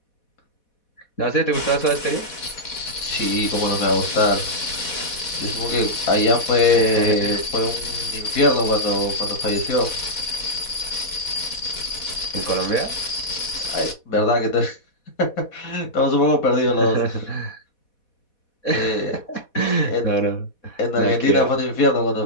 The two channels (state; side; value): late; right; 4.1 ms